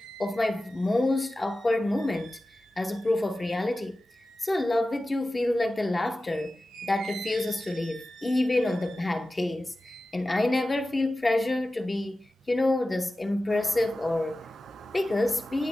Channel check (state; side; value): normal; both; correlation 0.95